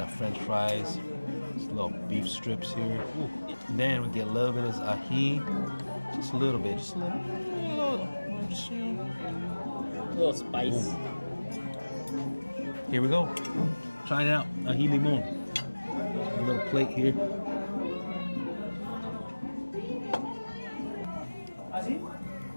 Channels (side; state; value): both; inverted; correlation -1.00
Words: French fries, just little beef strips here. Ooh. Then we get a little bit of ají, just a little bit, just a little, just, you know. A little spice. Boom. Here we go. Trying it out. Ají limon. A little plate here.